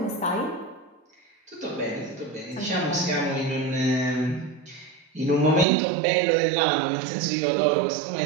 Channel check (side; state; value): left; drops out; at 5.7 s